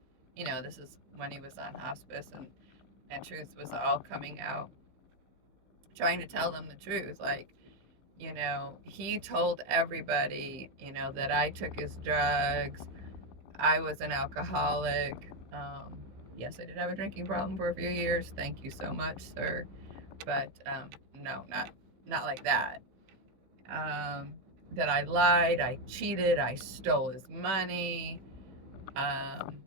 this is when he was on hospice and truth was all coming out, trying to tell them the truth. Like, he told everybody, that I took his drugs. I was an alcoholic. Yes, I did have a drinking problem for a few years. Thank you so much, sir. But no, not like that. That I lied, I cheated, I stole his money.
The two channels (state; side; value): late; left; 15 ms